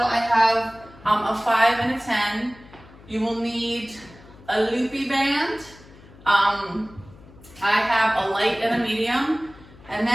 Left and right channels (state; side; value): noise; left; hum, 22 dB below the sound